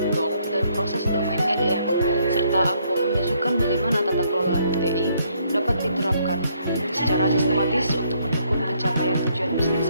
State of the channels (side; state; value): both; inverted; correlation -0.70